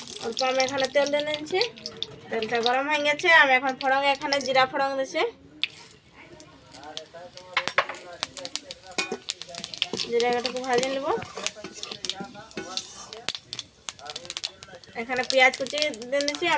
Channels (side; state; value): both; identical; correlation 1.00